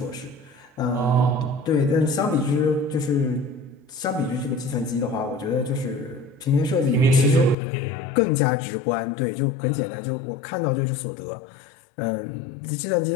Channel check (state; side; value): drops out; right; at 7.6 s